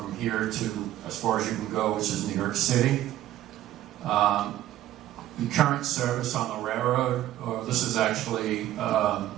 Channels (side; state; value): left; quieter; 13.6 dB